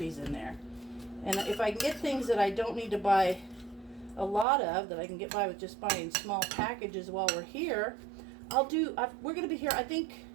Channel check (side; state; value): left; drops out; at 4.5 s